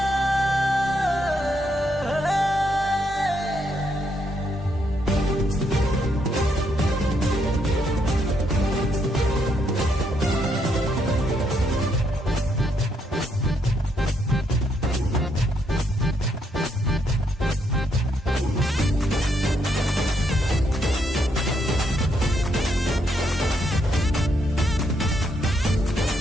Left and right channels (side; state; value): both; normal; correlation 0.76